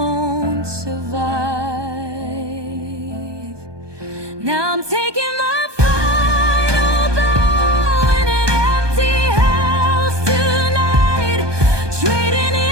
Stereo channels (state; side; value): late; left; 1.2 ms